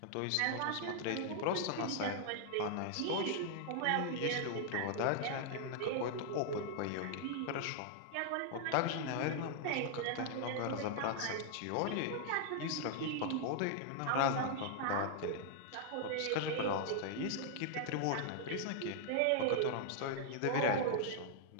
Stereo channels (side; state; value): both; different; correlation -0.01